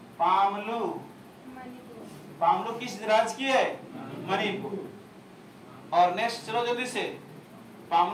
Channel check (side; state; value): both; identical; correlation 1.00